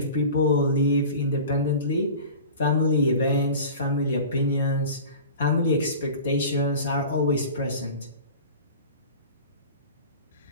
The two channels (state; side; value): inverted; both; correlation -0.38